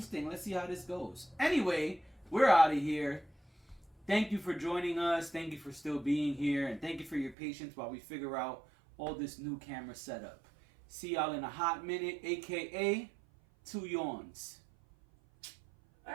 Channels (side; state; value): left; drops out; at 7.4 s